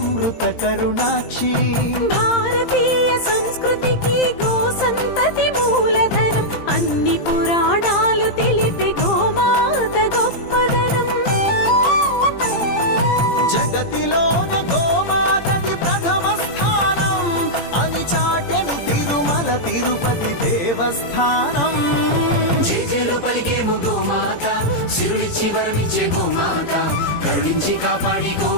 करुणाक्षी भारतीय संस्कृतिकी गो संतति मूलधनं अन्नि पुराणालु तेलिपे गोमात गोप्पदनं जगतिलोने गोमातदि प्रथम स्थानं अनि चाटेनु तिरुमल तिरुपति देवस्थानं జేజేలు పలికేము గోమాత సిరులిచ్చి వరమిచ్చే గోమాత కరుణించి కాపాడి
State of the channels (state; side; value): late; right; 17 ms